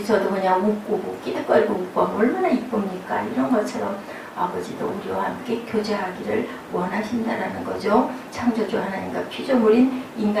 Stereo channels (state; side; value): identical; both; correlation 1.00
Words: 그냥 웃고 끼득거리고 웃고 하면 얼마나 이쁩니까? 이런 것처럼 아버지도 우리와 함께 교제하기를 원하신다라는 거죠. 창조주 하나님과 피조물인